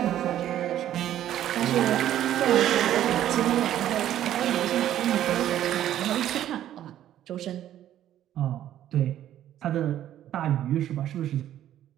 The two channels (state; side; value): quieter; left; 11.8 dB